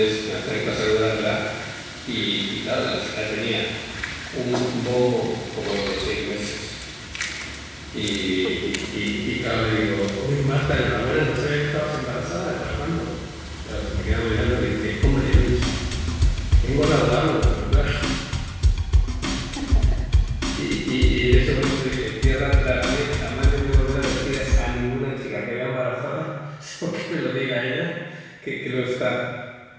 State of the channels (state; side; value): identical; both; correlation 1.00